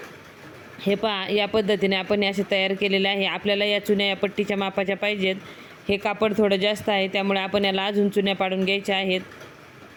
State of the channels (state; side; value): identical; both; correlation 1.00